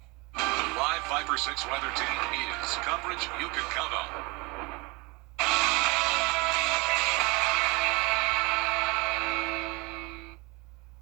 The live 5 for 6 weather team is coverage you can count on.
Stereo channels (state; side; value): quieter; left; 26.6 dB